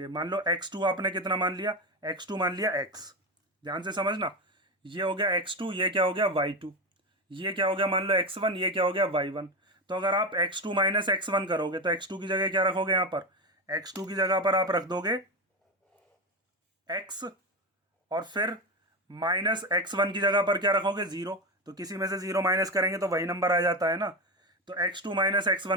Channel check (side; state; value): both; normal; correlation 0.17